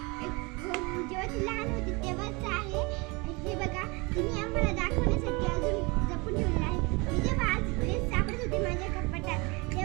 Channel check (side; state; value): left; quieter; 27.0 dB